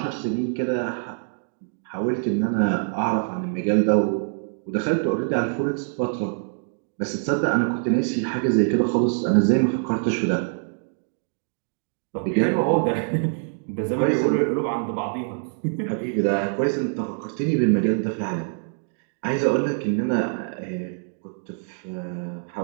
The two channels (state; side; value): silent; left; digital silence